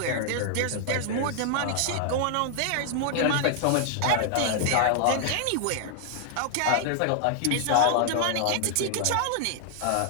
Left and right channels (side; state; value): both; different; correlation -0.01